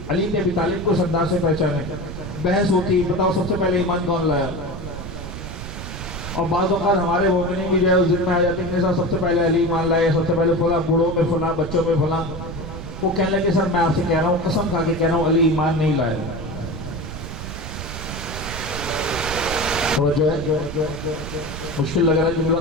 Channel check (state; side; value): noise; right; rumble, 9 dB below the sound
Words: علی بن ابی طالب کو اس انداز سے پہچانے، بحث ہوتی، بتاؤ سب سے پہلے ایمان کون لایا؟ اور بعض اوقات ہمارے مومنین بھی جو ہے اس دن میں آ جاتے ہیں کہ سب سے پہلے علی ایمان لائے، سب سے پہلے فلاں، بوڑھوں میں فلاں، بچوں میں فلاں۔ وہ کہنے لگے سر میں آپ سے کہہ رہا ہوں، قسم کھا کے کہہ رہا ہوں، علی ایمان نہیں لائے۔ توجہ ہے، مشکل لگ رہا ہے جملہ،